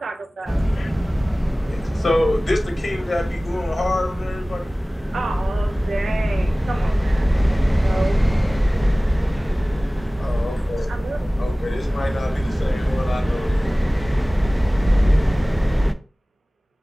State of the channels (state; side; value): normal; both; correlation 0.98